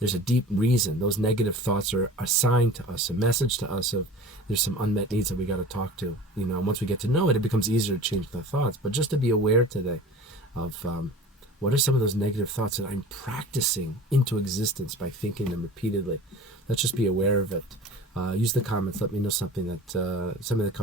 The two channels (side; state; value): both; normal; correlation 0.39